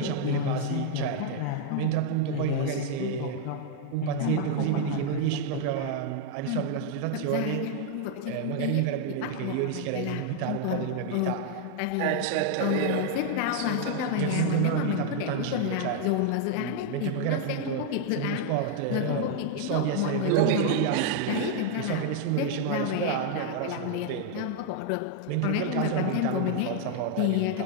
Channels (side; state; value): both; different; correlation 0.00